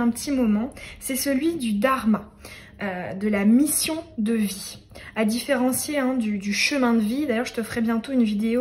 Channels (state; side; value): identical; both; correlation 1.00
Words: petit moment. C'est celui du dharma, de la mission de vie, à différencier du chemin de vie. D'ailleurs, je te ferai bientôt une